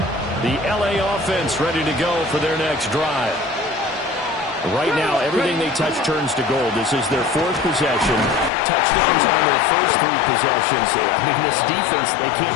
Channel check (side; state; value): right; drops out; at 8.5 s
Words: The LA offense ready to go for their next drive. Right now, everything they touch turns to gold. This is their fourth possession. Touchdowns on their first three possessions. I mean, this defense, they